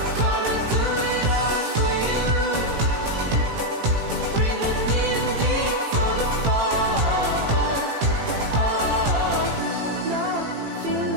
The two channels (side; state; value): left; late; 18 ms